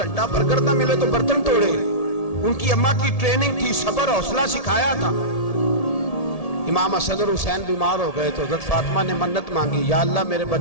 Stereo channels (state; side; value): late; right; 1.8 ms